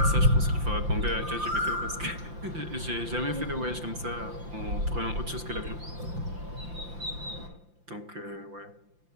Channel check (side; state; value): left; late; 5.8 ms